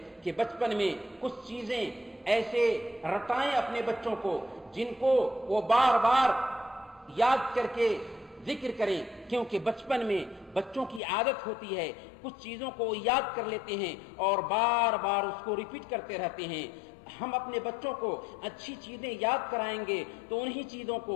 کہ بچپن میں کچھ چیزیں ایسے رٹائیں اپنے بچوں کو جن کو وہ بار بار یاد کر کے ذکر کریں، کیونکہ بچپن میں بچوں کی عادت ہوتی ہے کچھ چیزوں کو یاد کر لیتے ہیں اور بار بار اس کو ریپیٹ کرتے رہتے ہیں۔ ہم اپنے بچوں کو اچھی چیزیں یاد کرائیں گے تو انہی چیزوں کو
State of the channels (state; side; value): drops out; right; at 11.0 s